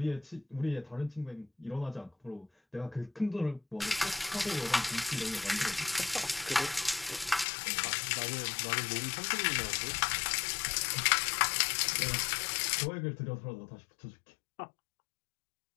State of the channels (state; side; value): drops out; right; at 7.5 s